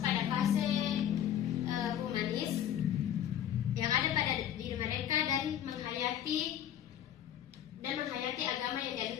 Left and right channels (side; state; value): right; quieter; 10.5 dB